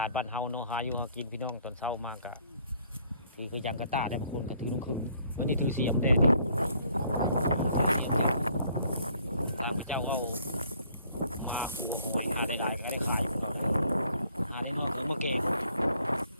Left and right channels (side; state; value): both; inverted; correlation -0.63